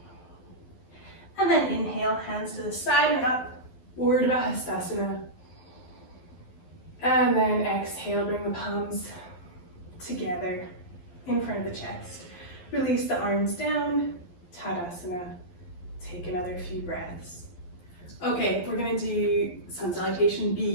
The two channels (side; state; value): right; late; 11 ms